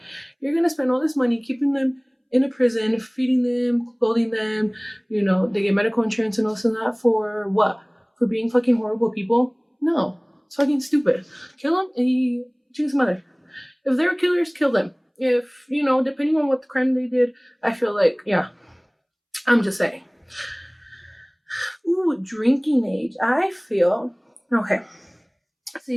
you're gonna spend all this money keeping them in a prison, feeding them, clothing them, they get medical insurance and all this and that, for what? For being fucking horrible people? No, it's fucking stupid. Kill them and you choose mother. If they're killers, kill them. If, depending on what the crime they did, I feel like, yeah, I'm just saying. Ooh, drinking age. I feel, okay.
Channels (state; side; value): identical; both; correlation 1.00